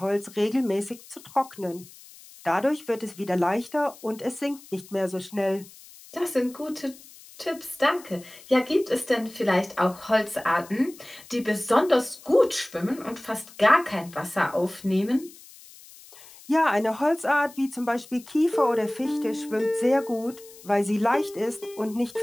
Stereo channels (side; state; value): left; noise; hiss, 21 dB below the sound